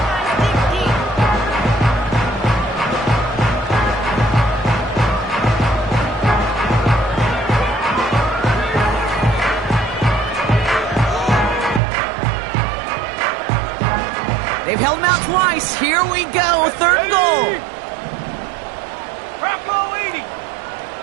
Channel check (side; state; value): left; drops out; at 11.8 s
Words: They've held him out twice. Here we go, third and goal. Prop goal 80.